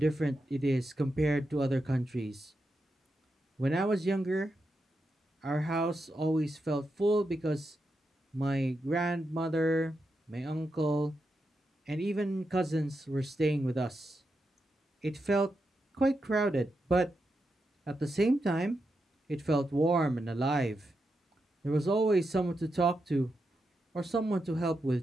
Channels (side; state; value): both; normal; correlation 0.86